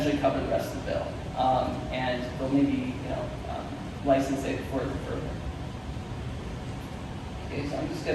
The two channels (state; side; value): identical; both; correlation 1.00